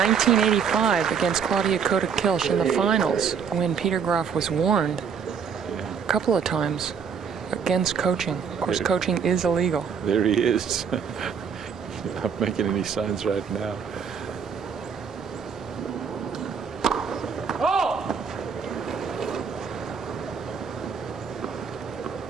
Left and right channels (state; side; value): quieter; left; 6.7 dB